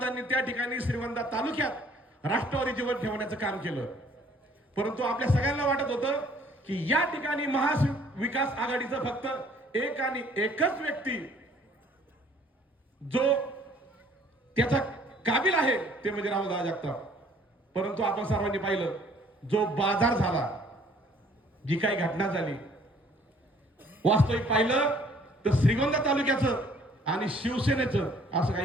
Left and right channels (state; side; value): normal; both; correlation 0.58